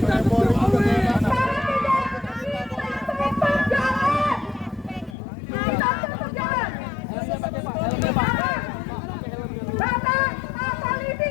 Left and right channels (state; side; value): drops out; right; at 5.2 s